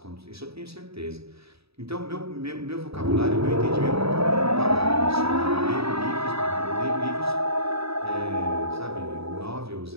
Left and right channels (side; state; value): left; late; 0.77 ms